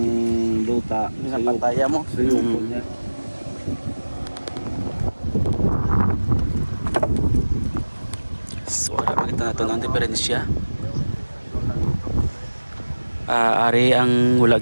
luta. Pinapataya mo. Suyuko niya. So, makita natin ang diferensya. Ari ang wala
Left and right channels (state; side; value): inverted; both; correlation -1.00